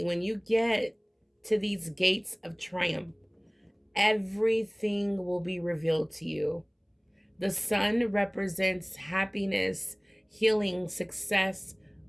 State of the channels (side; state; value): both; identical; correlation 1.00